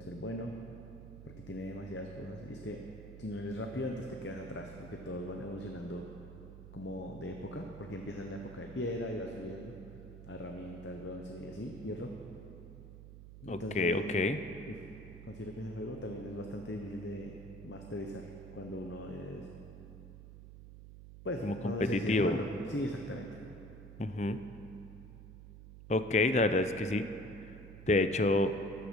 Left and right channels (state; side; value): noise; right; hum, 14 dB below the sound